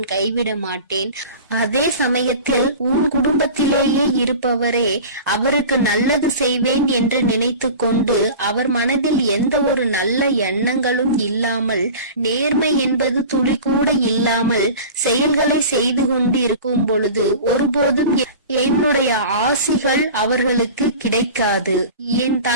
கைவிட மாட்டேன். அதே சமயத்தில் உன் குடும்பத்திலேயே இருப்பவரே அவருக்கு நல்லது செய்வேன் என்று நினைத்து கொண்டு அவர் மனதில் எந்த ஒரு நல்ல எண்ணங்களும் இல்லாமல், நேர்மை என்பது துளி கூட இல்லாமல் செயல்களை செய்து கொண்டு இருக்கும் பொழுது ஒருபோதும் என்னுடைய ஆசிகள் அவர்களுக்கு கிடைக்காது. என்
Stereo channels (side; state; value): both; inverted; correlation -0.36